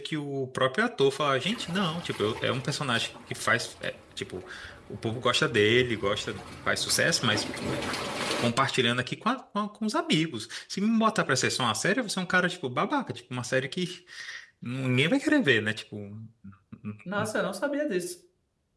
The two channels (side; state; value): both; identical; correlation 1.00